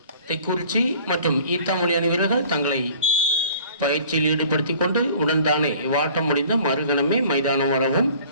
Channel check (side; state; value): both; inverted; correlation -0.50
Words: தெக்குறிச்சி மற்றும் ஈத்தாமொழி அணி வீரர்கள் தங்களை பயிற்சியில் ஈடுபடுத்திக் கொண்டு உடன்தானே வாட்டம் முடிந்த மறுகணமே மைதானம் வரவும்